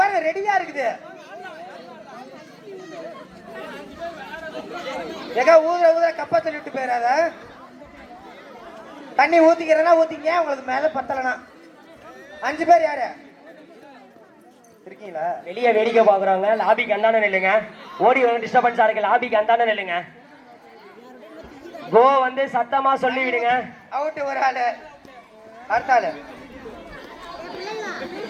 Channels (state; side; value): identical; both; correlation 1.00